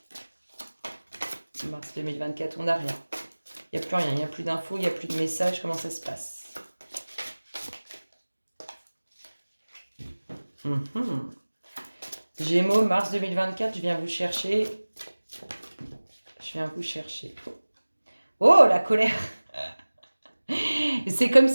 Mars 2024, on n'a rien. Il n'y a plus rien, il n'y a plus d'infos, il n'y a plus de messages. Comment ça se passe? Gémeaux, mars 2024, je viens vous chercher. Oh, la colère! C'est comme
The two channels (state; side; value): inverted; both; correlation -1.00